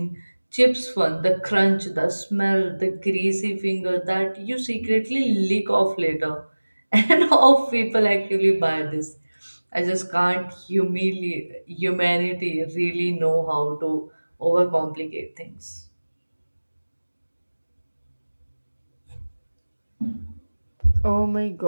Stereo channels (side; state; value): both; inverted; correlation -1.00